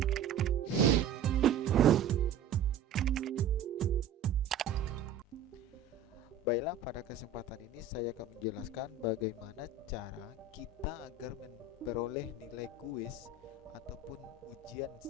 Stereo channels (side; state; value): left; quieter; 5.7 dB